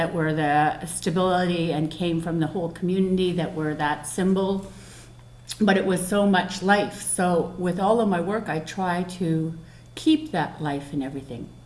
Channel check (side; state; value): both; identical; correlation 1.00